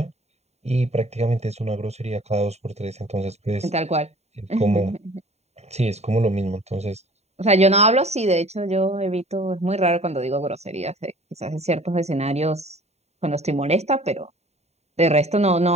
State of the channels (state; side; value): late; left; 0.32 ms